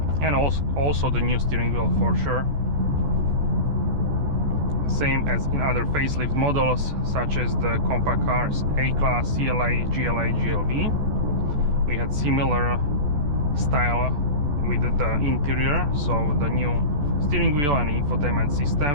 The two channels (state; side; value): late; left; 14 ms